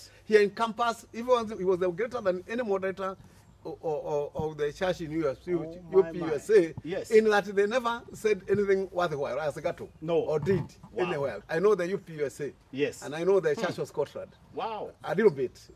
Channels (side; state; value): both; identical; correlation 1.00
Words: he encompassed, he was greater than any moderator of the church in USA, in that they never said anything worthwhile as Gato. No. Or did anywhere. I know the UPUSA. Yes. And I know the Church of Scotland. Wow. A little bit.